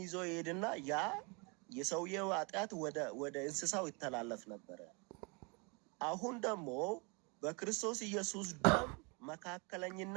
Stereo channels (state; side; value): quieter; left; 31.5 dB